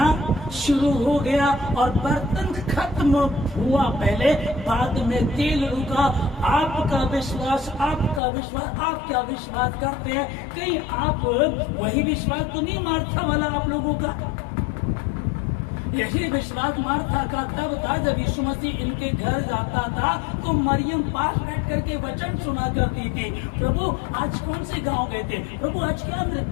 शुरू हो गया और बर्तन खत्म हुआ पहले, बाद में तेल रुका। आपका विश्वास, आपका विश्वास, आप क्या विश्वास करते हैं? कहीं आप वही विश्वास तो नहीं मार्था वाला आप लोगों का? यही विश्वास मार्था का तब था जब यीशु मसीह इनके घर जाता था तो मरियम पास बैठ करके वचन सुना करती थी। प्रभु आज कौन से गांव गए थे? प्रभु आज क्या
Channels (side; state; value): right; drops out; at 8.2 s